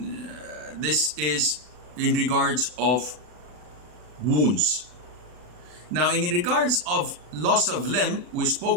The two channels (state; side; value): late; left; 40 ms